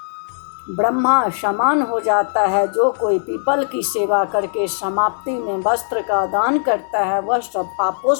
ब्रह्मा समान हो जाता है। जो कोई पीपल की सेवा करके समाप्ति में वस्त्र का दान करता है वह सब पापों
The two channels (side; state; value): right; silent; digital silence